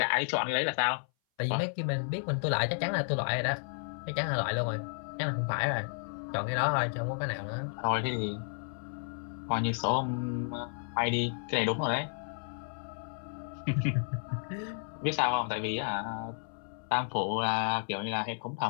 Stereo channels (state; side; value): silent; right; 56 dB below the other